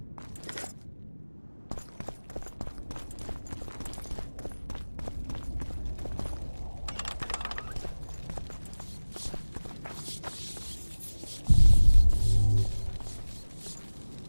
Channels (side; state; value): both; inverted; correlation -1.00